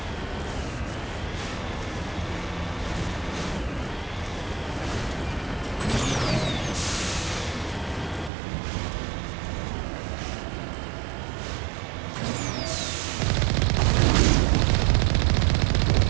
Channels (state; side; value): drops out; left; at 8.3 s